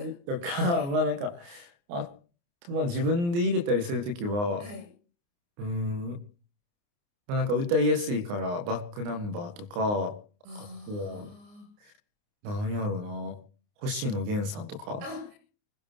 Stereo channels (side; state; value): left; late; 29 ms